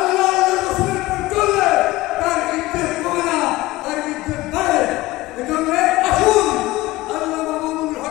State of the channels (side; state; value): right; quieter; 18.5 dB